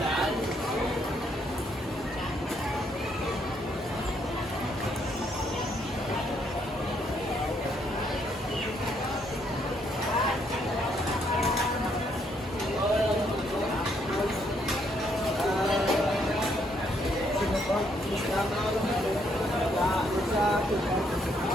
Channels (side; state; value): both; normal; correlation 0.72